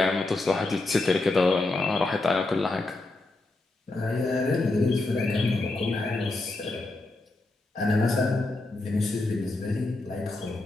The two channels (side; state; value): right; quieter; 3.0 dB